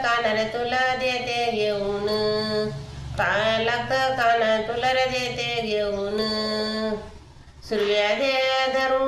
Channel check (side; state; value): both; identical; correlation 1.00